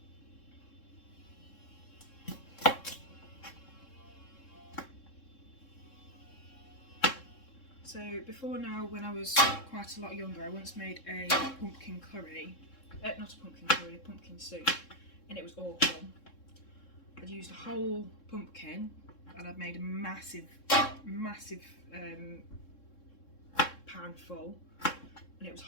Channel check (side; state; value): right; late; 3.7 ms